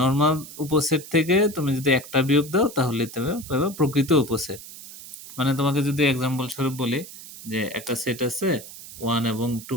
উপসেট থেকে তুমি যদি একটা বিয়োগ দাও, তাহলে তুমি পাবে প্রকৃত উপসেট। মানে তোমাকে যদি এক্সাম্পল স্বরূপ বলি, যে একটা সেট আছে 1 এবং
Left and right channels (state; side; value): noise; right; hiss, 15 dB below the sound